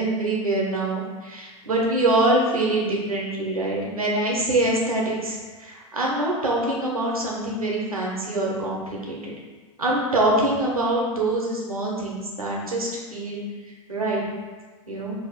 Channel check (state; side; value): normal; both; correlation 0.23